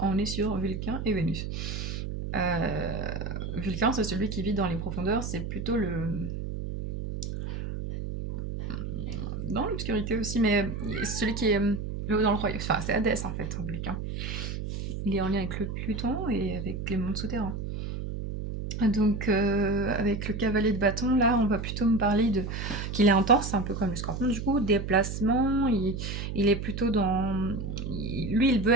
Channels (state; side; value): noise; right; hum, 5 dB below the sound